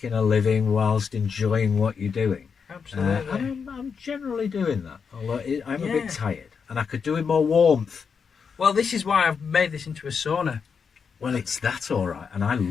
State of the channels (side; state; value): right; quieter; 6.1 dB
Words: a living whilst enjoying what you're doing. Absolutely. And I'm generally doing that. Although I'm a bit tired, and I could do with more warmth. Well, this is why I've made this into a sauna. Well, it's that all right, and I